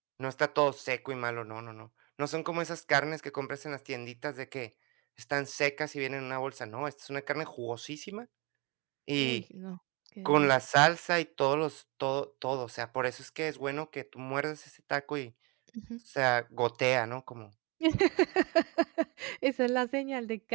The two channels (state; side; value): quieter; left; 28.3 dB